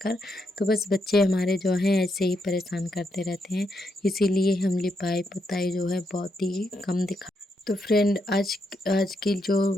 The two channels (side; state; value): both; normal; correlation 0.80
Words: तो बस बच्चे हमारे जो हैं ऐसे ही परेशान करते रहते हैं, इसीलिए हम लिपाई पुताई जो है बहुत ही कम दिखा। तो फ्रेंड आज की जो